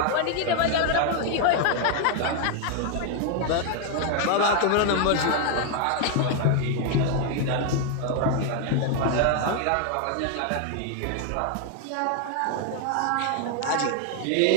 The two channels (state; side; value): different; both; correlation 0.00